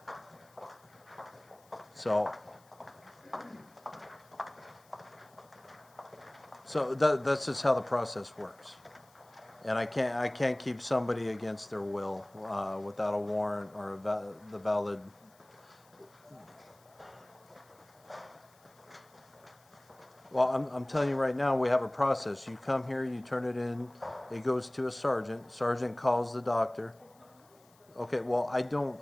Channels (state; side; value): noise; left; hiss, 30 dB below the sound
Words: So that's just how the process works. And I can't keep somebody against their will, without a warrant or the valid. Well, I'm telling you right now, we have a process. You come here, you turn it in, it goes to a sergeant, sergeant calls the doctor. Okay, well, I